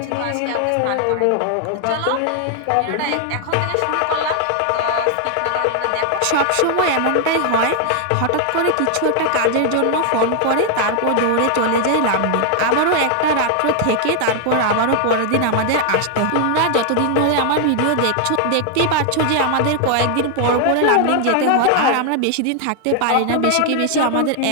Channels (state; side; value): different; both; correlation 0.00